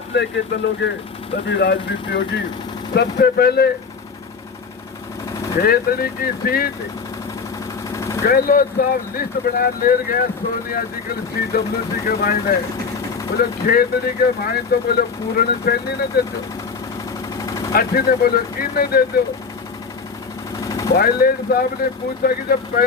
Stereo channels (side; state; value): right; quieter; 5.3 dB